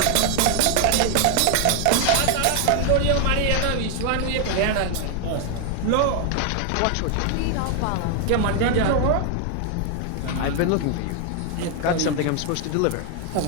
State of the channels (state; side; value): different; both; correlation 0.00